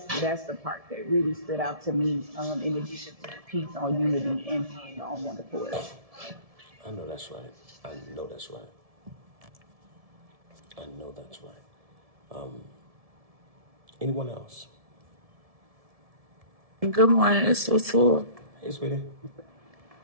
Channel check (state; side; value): late; left; 1.7 ms